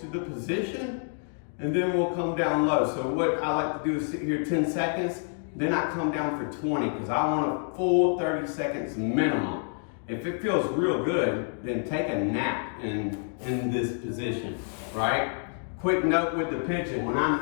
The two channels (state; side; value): silent; right; 59 dB below the other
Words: to the position, and then we'll come down low. So what I like to do is sit here 10 seconds, then I come down for 20, because I want a full 30 seconds minimum. If it feels real good, then take a nap in this position, right? Quick note with the pigeon, when